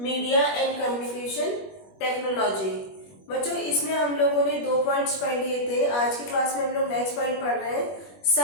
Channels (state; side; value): late; right; 21 ms